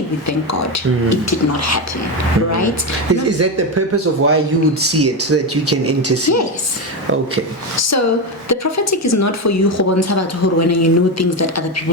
we thank God it did not happen, right? Is that the purpose of why you would see it, so that you can intercede? Yes. Okay. So the prophetic is not for you when you know things that other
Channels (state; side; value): normal; both; correlation 0.13